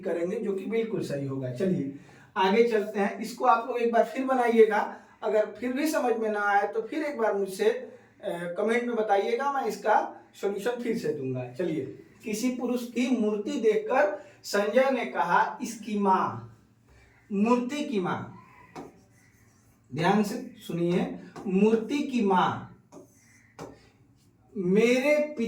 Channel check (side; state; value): both; identical; correlation 1.00